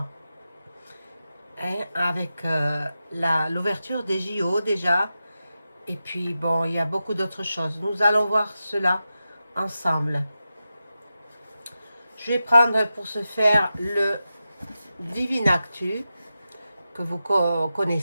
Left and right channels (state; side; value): inverted; both; correlation -0.91